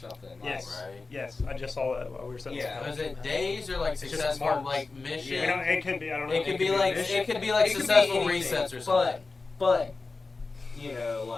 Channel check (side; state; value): right; quieter; 3.9 dB